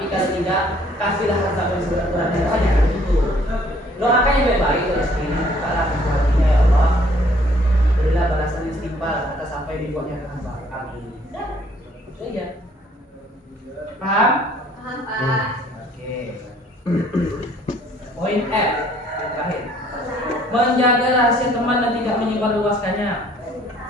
kalau tidak, kasihlah harta yang seberat-beratnya. Hanya itu. Doakan yang baik-baik rezeki ini, bukalah pintu hatinya ya Allah. Berilah balasan istighfar atas sampai dibuatnya ke hamba. Amin. Itu saja. Paham? Paham, Pak. Oke. Poin F terakhir. Menjaga rahasia teman dan tidak menyebarluaskannya.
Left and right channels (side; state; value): both; normal; correlation 0.60